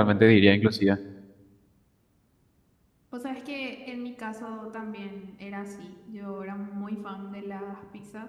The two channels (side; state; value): both; identical; correlation 1.00